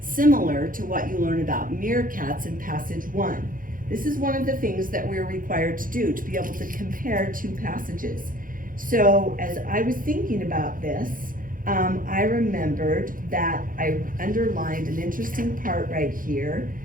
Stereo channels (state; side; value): late; left; 0.40 ms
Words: similar to what you learn about meerkats in passage 1? This is one of the things that we're required to do, to be able to compare 2 passages. So as I was thinking about this, I remembered that I underlined an interesting part right here